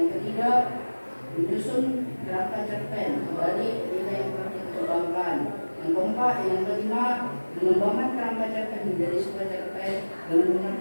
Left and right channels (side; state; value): both; inverted; correlation -1.00